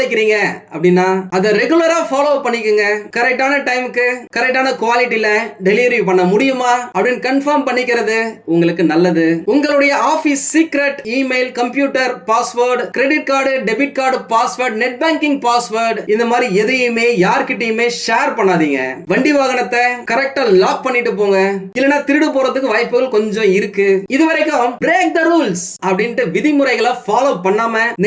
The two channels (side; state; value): both; identical; correlation 1.00